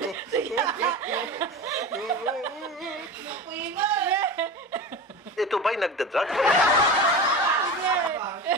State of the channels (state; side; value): normal; both; correlation 0.29